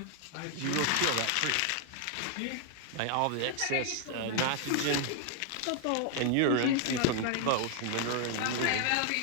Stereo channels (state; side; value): different; both; correlation 0.00